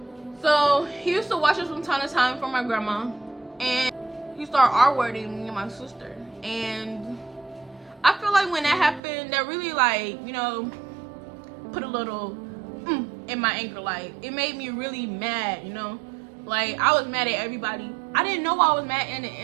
So he used to watch us from time to time from my grandma, and he started R-wording me and my sister. And I feel like when that happened, that really, like, you know, put a little in my anger. Like, it made me really mad, you know. Like, I was mad at everybody. I didn't know I was mad in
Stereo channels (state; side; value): drops out; left; at 9.0 s